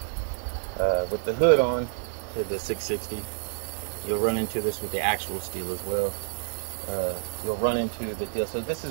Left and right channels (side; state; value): left; silent; digital silence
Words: with the hood on to the 660, you'll run into this with the actual steel as well. You'll run into the deal. So this is